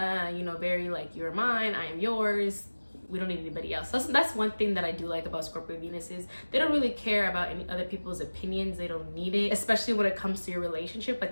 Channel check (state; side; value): inverted; both; correlation -1.00